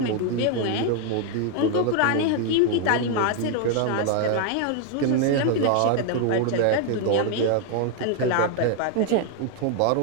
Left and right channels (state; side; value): different; both; correlation 0.00